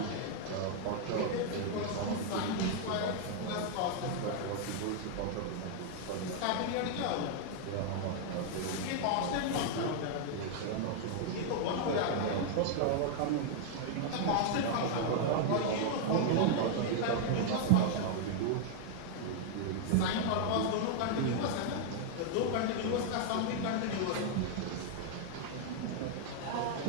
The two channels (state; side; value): different; both; correlation 0.00